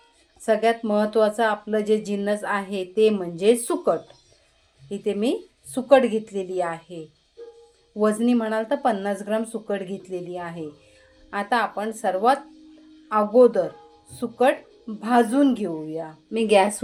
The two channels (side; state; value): both; identical; correlation 1.00